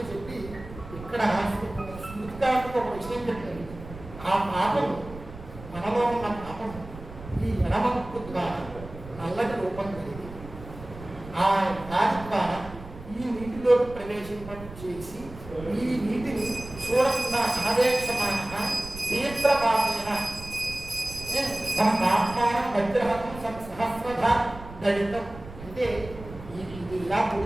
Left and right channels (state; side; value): noise; right; rumble, 15 dB below the sound